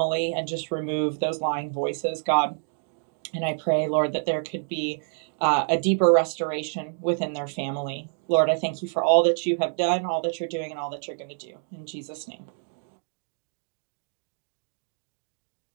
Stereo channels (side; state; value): left; silent; digital silence